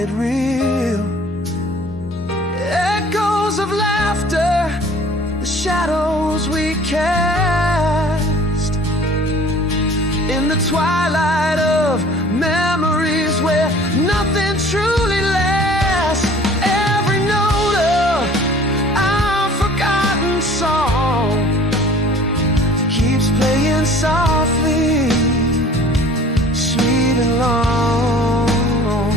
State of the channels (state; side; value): normal; both; correlation 0.49